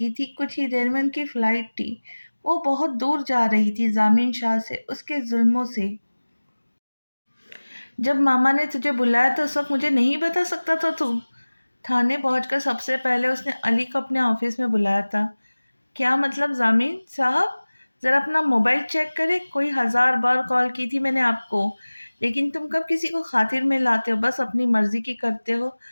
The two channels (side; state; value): both; inverted; correlation -1.00